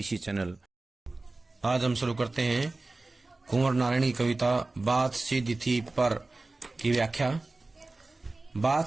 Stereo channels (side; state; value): left; quieter; 3.2 dB